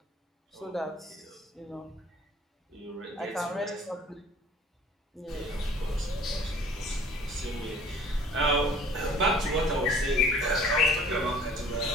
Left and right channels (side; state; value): both; normal; correlation 0.51